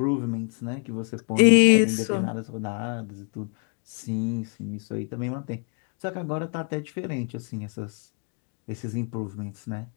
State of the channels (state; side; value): quieter; right; 39.4 dB